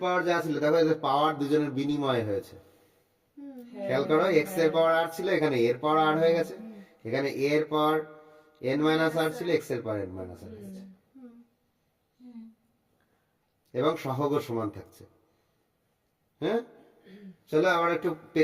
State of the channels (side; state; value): both; identical; correlation 1.00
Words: পাওয়ার যা ছিল, দেখো এদের পাওয়ার দুজনের বিনিময় হয়েছে। খেয়াল করো, x এর পাওয়ার r ছিল, এখানে a এর পাওয়ার r হয়ে গেছে, এখানে a এর পাওয়ার n মাইনাস r ছিল, x এর পাওয়ার n মাইনাস r হয়েছে, এবং সহগও সমান থাকছে। হ্যাঁ, চলো আবার একটু